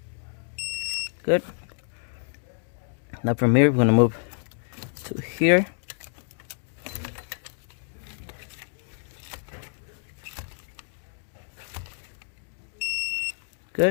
Good. Now from here we're gonna move to here.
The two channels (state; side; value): silent; right; digital silence